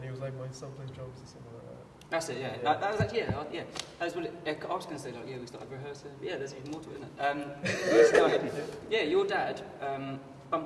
he was like, my son plays drums or something like that. That's it, yeah. Yeah. That was actually, yeah. That's what I was going to say, like, yeah, we started rehearsing. Yeah, there's even more to it, isn't it? Your dad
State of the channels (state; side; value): identical; both; correlation 1.00